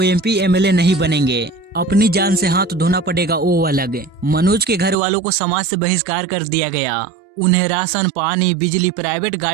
एमपी एमएलए नहीं बनेंगे। अपनी जान से हाथ धोना पड़ेगा वो अलग। मनोज के घर वालों को समाज से बहिष्कार कर दिया गया। उन्हें राशन, पानी, बिजली, प्राइवेट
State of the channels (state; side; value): drops out; left; at 5.0 s